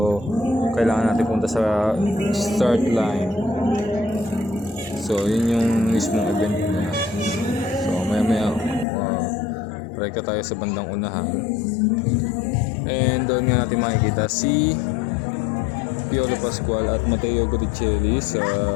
kailangan natin punta sa start line. So yun yung mismong event niya. So maya reka tayo sa bandang unahan. And doon nga natin makikita si Piolo Pascual at Matteo Guticelli sa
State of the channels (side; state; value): right; drops out; at 8.8 s